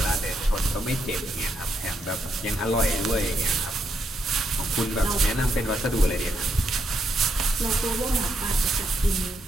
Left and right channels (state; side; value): normal; both; correlation 0.78